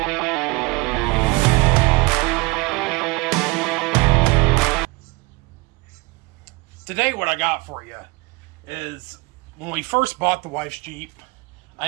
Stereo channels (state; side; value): quieter; left; 23.8 dB